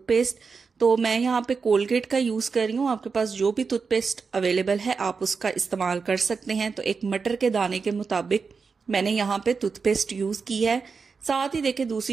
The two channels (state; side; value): quieter; left; 5.1 dB